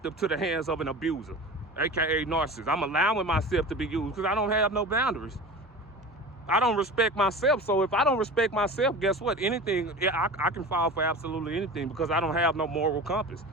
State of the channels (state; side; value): normal; both; correlation 0.34